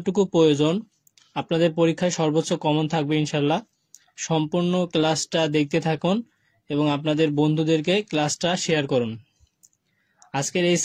প্রয়োজন আপনাদের পরীক্ষায় সর্বোচ্চ কমন থাকবে ইনশাল্লাহ। সম্পূর্ণ ক্লাসটা দেখতে থাকুন এবং আপনাদের বন্ধুদেরকে ক্লাসটা শেয়ার করুন। আজকের এই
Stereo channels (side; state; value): both; identical; correlation 1.00